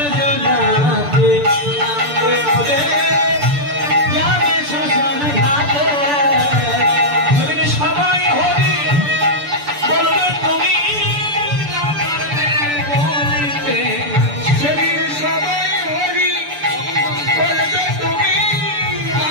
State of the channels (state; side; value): late; left; 6.8 ms